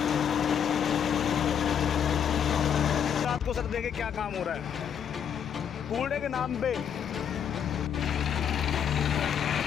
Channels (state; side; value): quieter; right; 8.3 dB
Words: रात को सर देखिए क्या काम हो रहा है कूड़े के नाम पे।